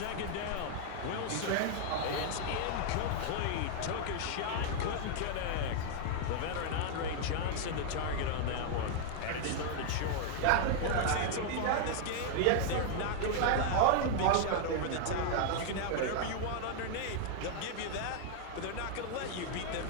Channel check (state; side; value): different; both; correlation -0.01